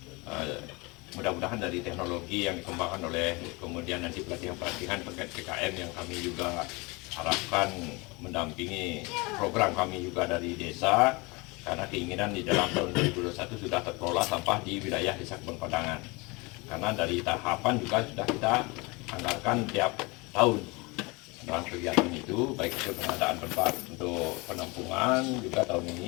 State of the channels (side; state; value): right; quieter; 26.3 dB